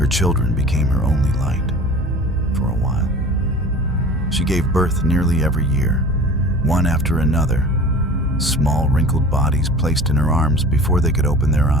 children became her only light, for a while. She gave birth nearly every year, one after another, small wrinkled bodies placed in her arms before they could open their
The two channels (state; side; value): normal; both; correlation 0.41